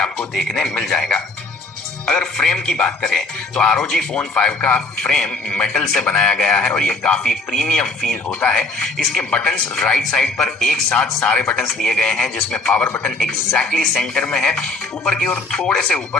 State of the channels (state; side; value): quieter; right; 3.2 dB